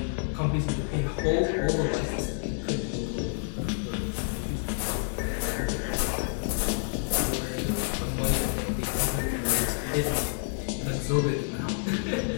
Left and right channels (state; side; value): silent; right; 57 dB below the other